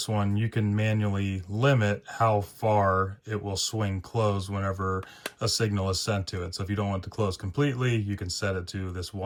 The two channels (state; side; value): identical; both; correlation 1.00